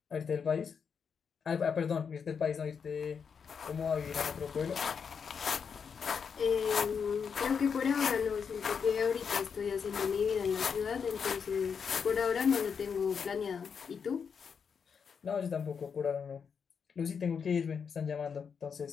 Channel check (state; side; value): quieter; right; 6.4 dB